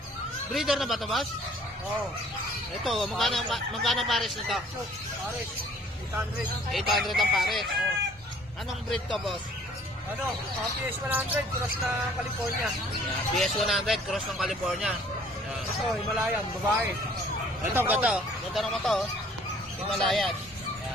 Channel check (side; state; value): both; normal; correlation 0.56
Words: Breeder na ba to, boss? Oo. Ito, magkano pares nito? Pares. 800. 800 ang pares. Anong breed to, boss? PS 100, cross na California. PS 100, cross ng California. Yan. Ito, Himalayan, babae. Ito, ganda. Ganda naman to. Himalayan.